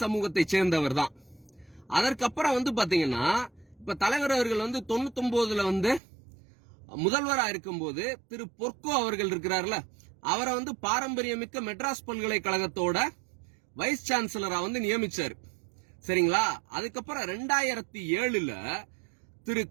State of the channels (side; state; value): left; drops out; at 6.0 s